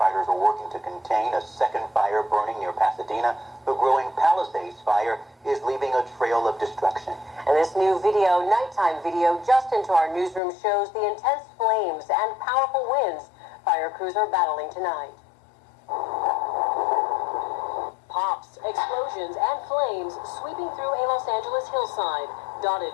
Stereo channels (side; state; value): right; drops out; at 10.4 s